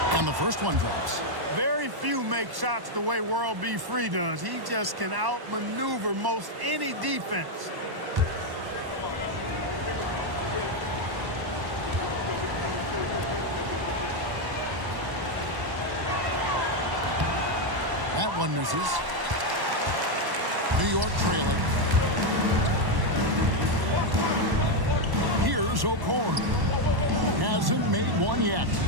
And the first one drops. Very few make shots the way World B. Free does. He just can outmaneuver most any defense. That one misses. New York trailing. Here's O'Corn. Hasn't made one yet.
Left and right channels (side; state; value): left; late; 1.1 ms